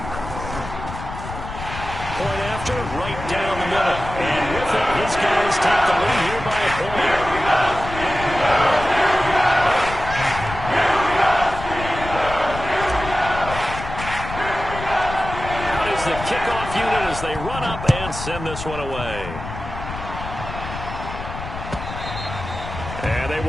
Point after, right down the middle. And with it, his guys take the lead here by a point. The kickoff unit as they run up and send this one away. And they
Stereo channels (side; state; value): left; noise; rumble, 9 dB below the sound